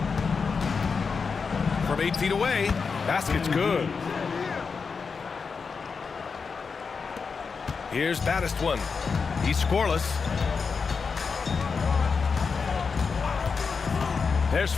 From 8 feet away. Basket's good. Here's Battistone. He's scoreless. There's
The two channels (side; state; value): right; quieter; 5.2 dB